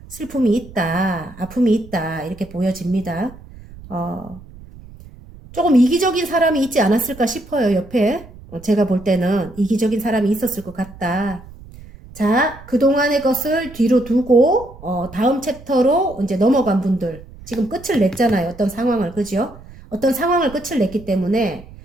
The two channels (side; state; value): right; noise; rumble, 19 dB below the sound